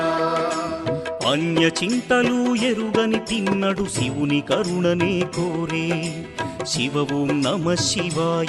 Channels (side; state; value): both; identical; correlation 1.00